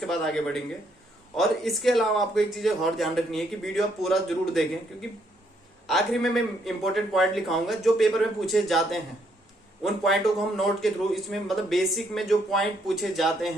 बाद आगे बढ़ेंगे। और इसके अलावा आपको एक चीज और ध्यान रखनी है कि वीडियो आप पूरा जरूर देखें, क्योंकि आखिरी में मैं इंपॉर्टेंट पॉइंट लिखाऊंगा जो पेपर में पूछे जाते हैं। उन पॉइंटों को हम नोट के थ्रू इसमें मतलब बेसिक में जो पॉइंट पूछे जाते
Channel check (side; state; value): both; normal; correlation 0.72